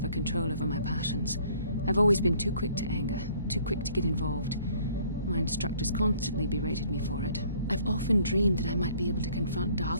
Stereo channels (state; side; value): inverted; both; correlation -0.59